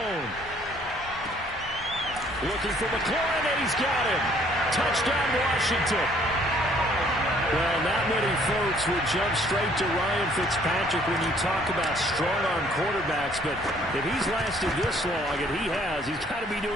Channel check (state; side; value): normal; both; correlation 0.61